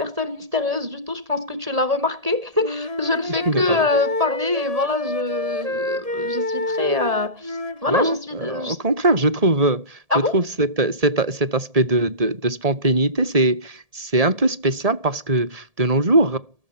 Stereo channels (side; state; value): left; late; 1.7 ms